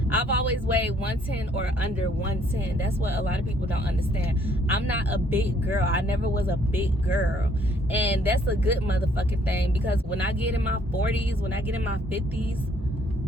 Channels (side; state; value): both; normal; correlation 0.64